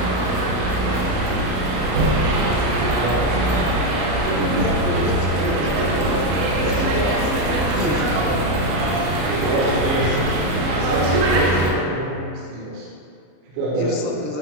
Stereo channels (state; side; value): late; left; 33 ms